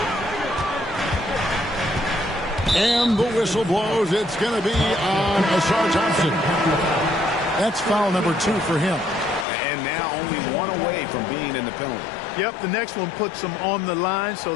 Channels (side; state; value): right; drops out; at 9.5 s